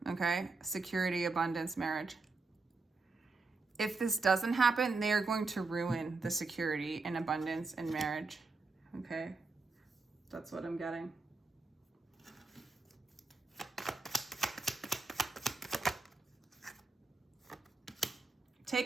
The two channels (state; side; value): quieter; left; 3.9 dB